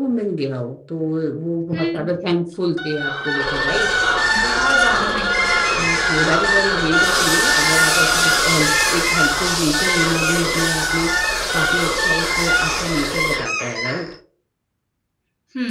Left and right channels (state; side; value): identical; both; correlation 1.00